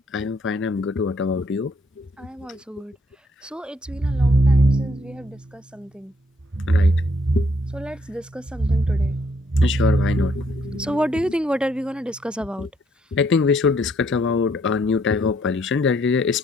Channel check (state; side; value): normal; both; correlation 0.69